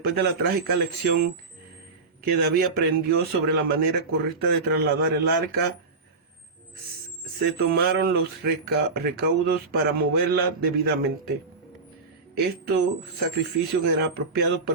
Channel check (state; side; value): quieter; left; 4.0 dB